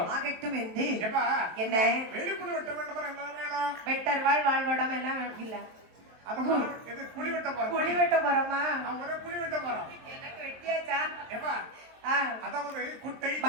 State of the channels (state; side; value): late; left; 23 ms